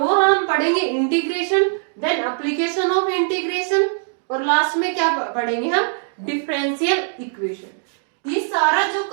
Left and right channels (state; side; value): silent; left; digital silence